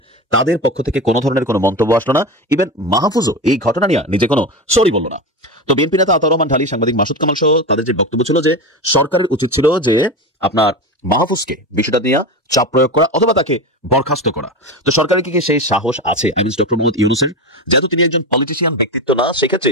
তাদের পক্ষ থেকে কোনো ধরনের কোনো মন্তব্য আসলো না। ইভেন মাহফুজও এই ঘটনা নিয়ে নিজে কোনো সরি বলল না। তো বিএনপি নেতা আতাউর রহমান ঢালি, সাংবাদিক মাসুদ কামাল সহ তাদের যে বক্তব্য ছিল যে সরকারের উচিত ছিল যে আপনার মাহফুজকে বিষয়টা নিয়ে চাপ প্রয়োগ করা অথবা তাকে বরখাস্ত করা। তো সরকারের কি সেই সাহস আছে? আই মিন ডক্টর মোহাম্মদ ইউনূসের, যেহেতু তিনি একজন পলিটিশিয়ান ব্যক্তিত্ব না, সেক্ষেত্রে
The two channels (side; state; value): both; normal; correlation 0.22